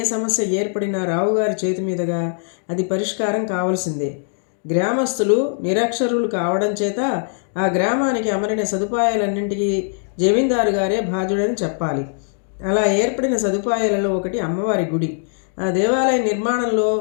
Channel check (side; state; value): right; silent; digital silence